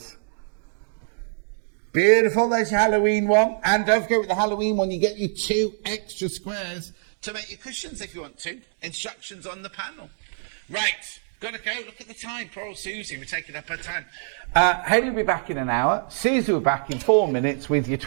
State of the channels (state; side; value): silent; left; digital silence